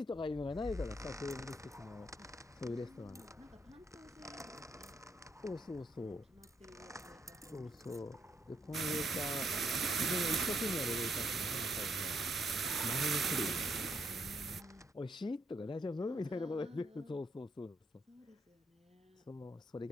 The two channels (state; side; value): normal; both; correlation 0.75